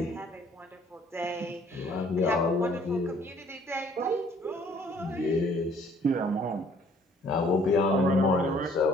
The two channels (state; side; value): normal; both; correlation 0.59